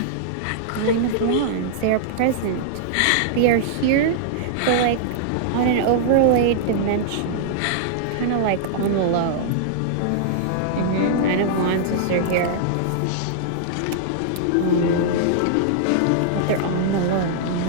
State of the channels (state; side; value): different; both; correlation -0.02